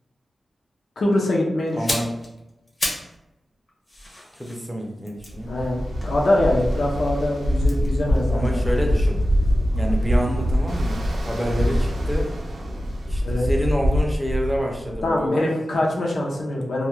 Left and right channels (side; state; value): both; normal; correlation 0.94